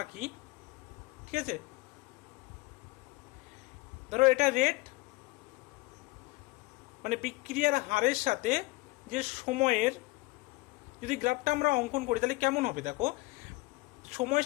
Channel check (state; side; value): quieter; right; 22.9 dB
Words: আঁকি, ঠিক আছে, ধরো এটা রেট মানে বিক্রিয়ার হারের সাথে যে সময়ের যদি গ্রাফটা আমরা অঙ্কন করি তাহলে কেমন হবে দেখো। সময়ের